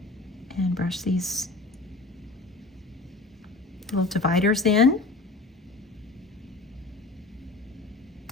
and brush these little dividers in,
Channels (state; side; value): quieter; right; 3.4 dB